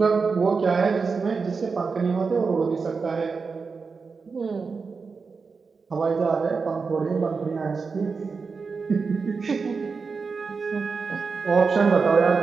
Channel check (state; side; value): quieter; left; 4.9 dB